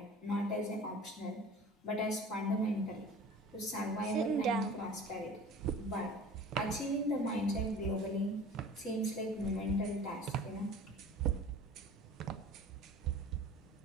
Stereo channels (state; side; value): normal; both; correlation 0.42